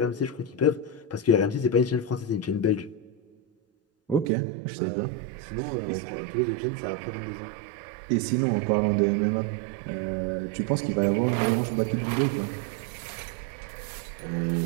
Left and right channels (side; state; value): left; drops out; at 4.3 s